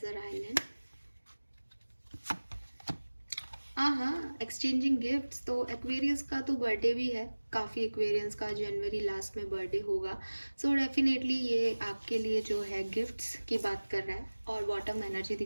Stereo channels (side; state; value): both; inverted; correlation -1.00